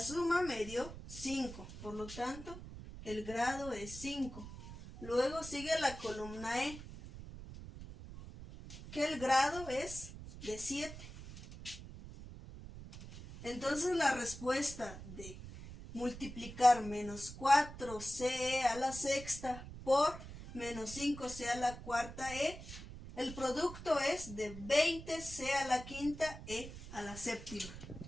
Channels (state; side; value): noise; right; rumble, 12 dB below the sound